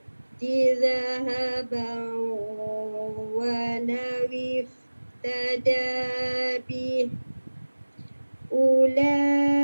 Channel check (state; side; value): inverted; both; correlation -1.00